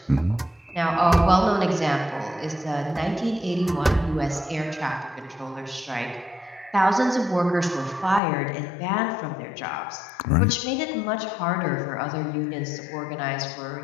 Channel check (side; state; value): right; drops out; at 8.2 s